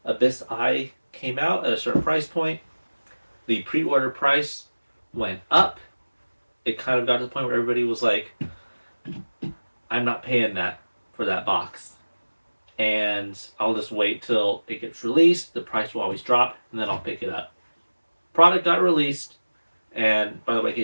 Abyss Eye came out at a certain price point. The pre-order price went up. It kind of got to the point where everybody was like, I'm not paying that for that box. And I'll just wait till it gets released. The price will always drop, and then I'll pick it up. Product got released, and by the way, in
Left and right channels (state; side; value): inverted; both; correlation -1.00